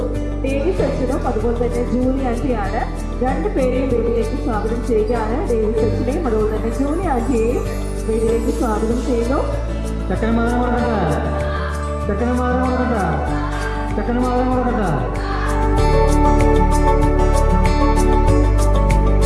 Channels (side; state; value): both; identical; correlation 1.00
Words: ഡേവിസ് അച്ഛനും അതുപോലെ തന്നെ ജൂലി ആൻറ്റിയാണ്. രണ്ടുപേരെയും വീട്ടിലേക്ക് സ്വാഗതം ചെയ്യുകയാണ്. ഡേവിസ് അച്ഛനെയും അതുപോലെ തന്നെ ജൂലി ആൻറ്റിയെയും വീട്ടിലേക്ക് സ്വാഗതം ചെയ്യുന്നു.